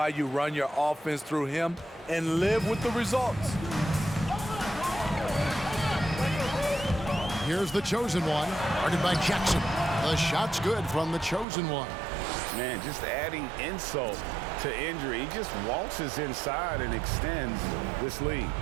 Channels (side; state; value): left; drops out; at 11.5 s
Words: you run your offense through him and live with the results. Here's the chosen one, guarded by Jackson. The shot's good from the chosen one. Man, just adding insult to injury. He just waltzes inside and extends this lead.